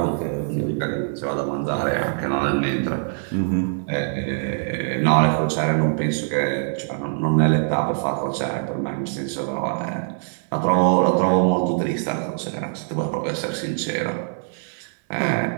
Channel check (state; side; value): silent; left; 58 dB below the other